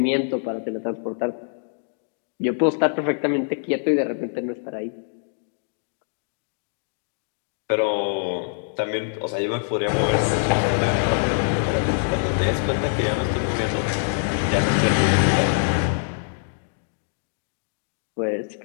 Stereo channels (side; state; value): right; silent; digital silence